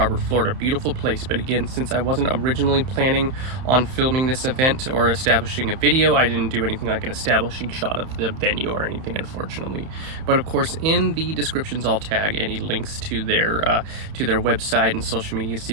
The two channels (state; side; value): late; left; 31 ms